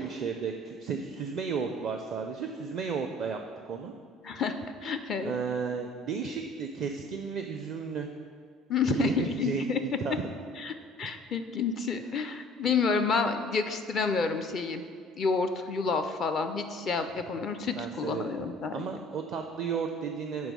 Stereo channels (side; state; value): both; normal; correlation 0.51